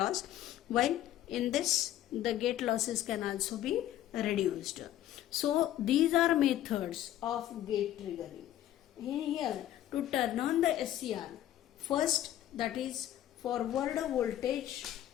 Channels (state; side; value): quieter; right; 12.6 dB